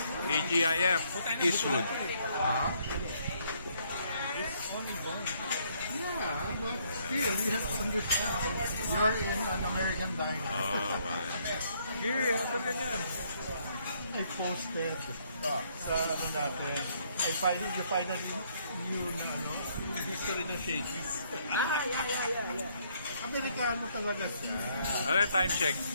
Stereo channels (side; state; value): both; inverted; correlation -0.68